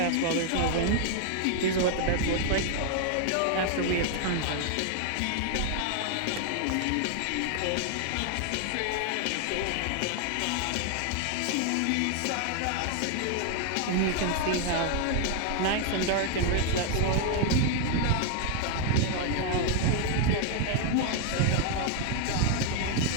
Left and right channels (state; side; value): different; both; correlation 0.00